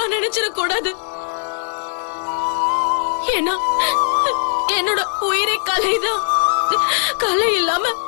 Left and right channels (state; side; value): silent; right; digital silence